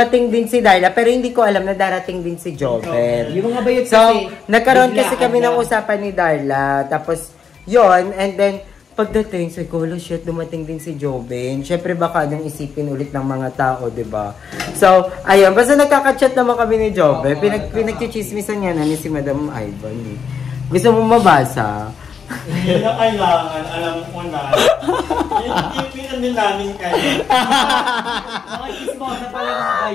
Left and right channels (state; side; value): quieter; right; 6.6 dB